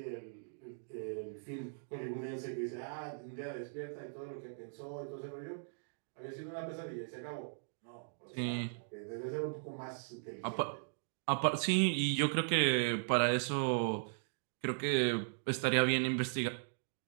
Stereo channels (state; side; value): silent; left; digital silence